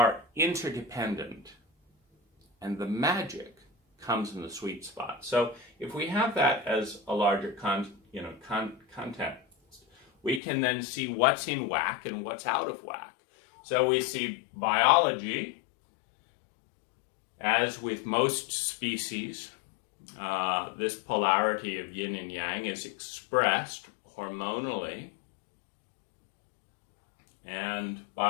interdependent, and the magic comes in the sweet spot. So if we have that as a larger content, we can then see what's in whack and what's out of whack. So we see biology, as with most species, this polarity of yin and yang is expressed hormonally and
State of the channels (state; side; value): drops out; right; at 10.4 s